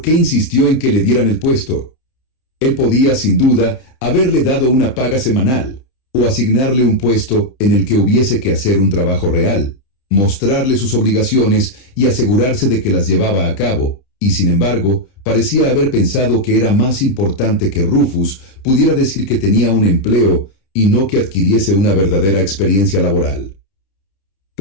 qué insistió en que le dieran el puesto? Él podía, sin duda, haberle dado una paga semanal, o asignarle un puesto en el que hubiese que hacer un trabajo real, mostrarle sus obligaciones y asegurarse de que las llevaba a cabo, y sin embargo, parecía haber pensado que era más importante que Rufus pudiera decir que tenía un empleo y no que adquiriese una verdadera experiencia laboral.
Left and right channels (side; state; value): right; late; 31 ms